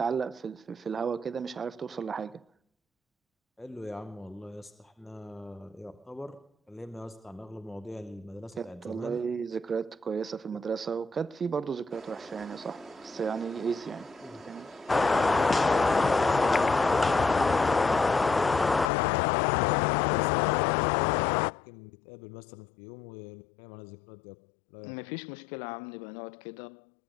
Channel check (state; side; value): drops out; right; at 18.9 s